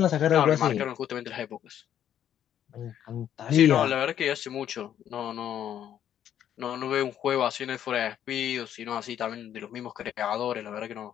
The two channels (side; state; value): right; quieter; 10.3 dB